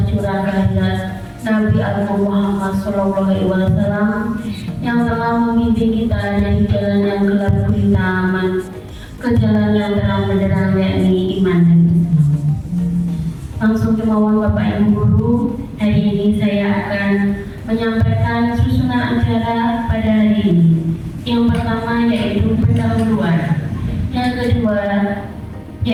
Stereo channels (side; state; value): both; identical; correlation 1.00